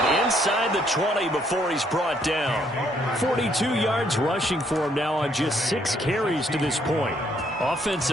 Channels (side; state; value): both; normal; correlation 0.69